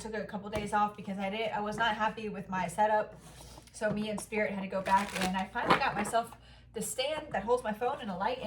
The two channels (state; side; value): identical; both; correlation 1.00